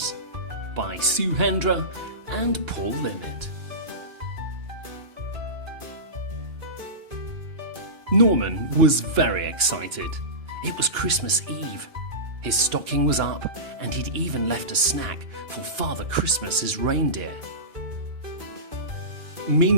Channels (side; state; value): left; late; 2.9 ms